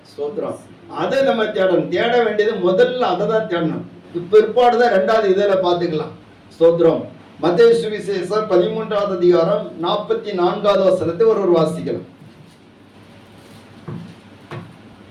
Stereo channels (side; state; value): both; identical; correlation 1.00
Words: ஸ்தோத்திரம். அதை நம்ம தேடணும். தேட வேண்டியது முதல்ல அதை தான் தேடணும். பிற்பாடுதான் ரெண்டாவது இதில பார்த்துக்கலாம். ஸ்தோத்திரம். மத்தேயு சுவிசேஷம் 13வது அதிகாரம் 44வது வசனத்தை ஒரு வாசிக்கலாம்.